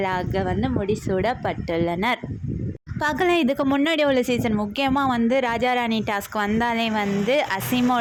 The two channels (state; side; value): identical; both; correlation 1.00